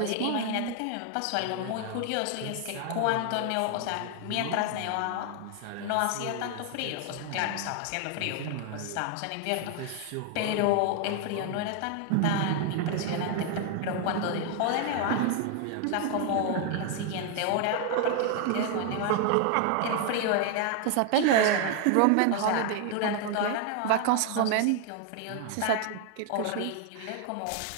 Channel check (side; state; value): both; different; correlation 0.00